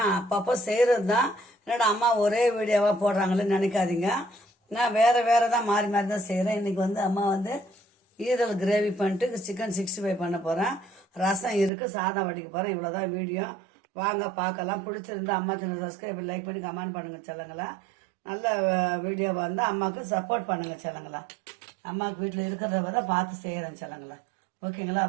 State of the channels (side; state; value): left; drops out; at 11.7 s